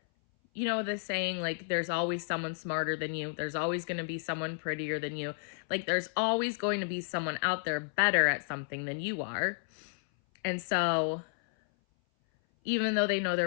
the saying, like, there's always someone smarter than you. There's always going to be someone prettier than you. Like, there's always going to be someone out there better at something than you are. And so even though they know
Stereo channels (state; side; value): silent; right; 56 dB below the other